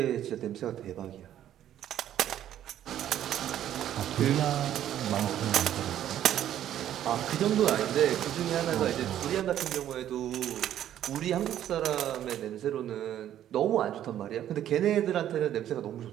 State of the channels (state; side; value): quieter; left; 11.3 dB